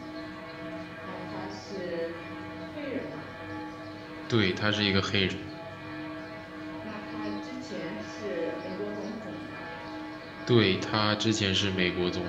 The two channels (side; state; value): both; identical; correlation 1.00